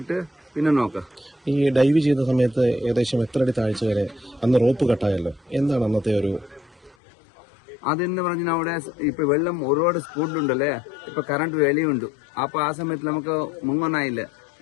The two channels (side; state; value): right; drops out; at 7.0 s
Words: പിന്നെ നോക്കാം. ഈ ഡൈവ് ചെയ്ത സമയത്ത് ഏകദേശം എത്ര അടി താഴ്ച വരെ അന്ന് റോപ്പ് കട്ടായല്ലോ, എന്താണ് അന്നത്തെ ഒരു അതെന്ന് പറഞ്ഞാൽ അവിടെ ഇപ്പൊ വെള്ളം ഒരുപാട് സ്പീഡിലുണ്ടല്ലേ, ഇപ്പൊ കറണ്ട് വെളിയുണ്ട്. അപ്പൊ ആ സമയത്ത് നമുക്ക് മുങ്ങാനായില്ല.